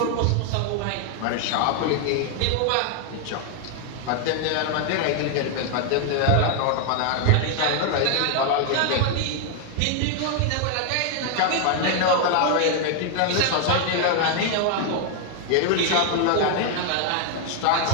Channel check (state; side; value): different; both; correlation 0.00